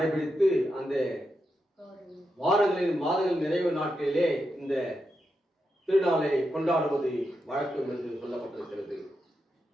அந்த வாரங்களின் மாதங்கள் நிறைவு நாட்களிலே இந்த திருநாளை கொண்டாடுவது வழக்கம் என்று சொல்லப்பட்டிருக்கிறது.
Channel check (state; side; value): normal; both; correlation 0.86